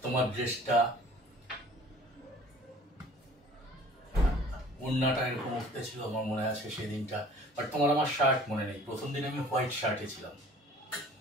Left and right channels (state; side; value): normal; both; correlation 0.50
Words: তোমার ড্রেসটা, ওড়নাটা এরকম উঠতে ছিল, আমার মনে আছে সেদিনটা। বাট তোমার আমার শার্ট মনে নেই। প্রথম দিন আমি হোয়াইট শার্টে ছিলাম,